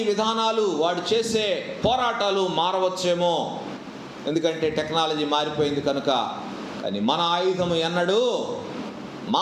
విధానాలు, వాడు చేసే పోరాటాలు మారవచ్చేమో, ఎందుకంటే టెక్నాలజీ మారిపోయింది కనుక. కానీ మన ఆయుధము ఎన్నడూ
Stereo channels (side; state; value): both; identical; correlation 1.00